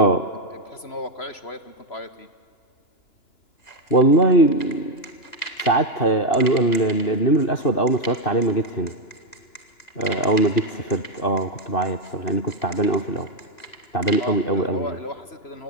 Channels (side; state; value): right; late; 2.9 ms